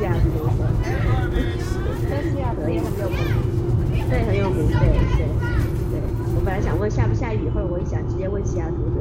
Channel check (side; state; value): both; identical; correlation 1.00